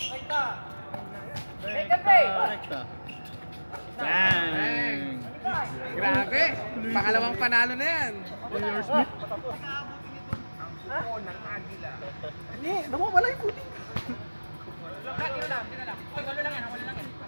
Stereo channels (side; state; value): both; inverted; correlation -1.00